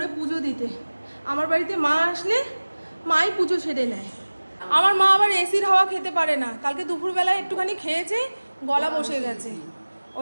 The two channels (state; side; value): inverted; both; correlation -1.00